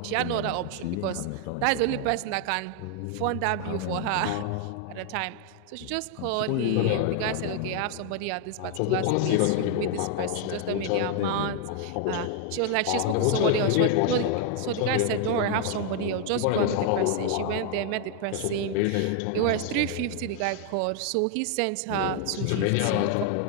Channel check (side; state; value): both; different; correlation 0.00